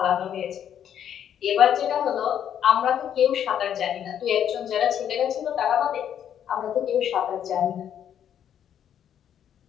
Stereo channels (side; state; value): right; quieter; 9.5 dB